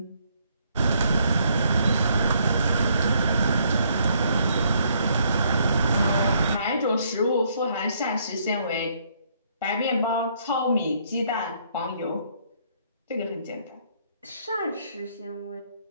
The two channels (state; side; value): inverted; both; correlation -0.69